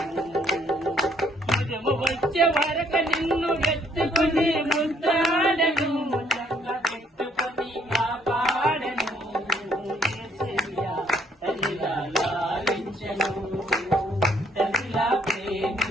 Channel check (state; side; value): normal; both; correlation 0.65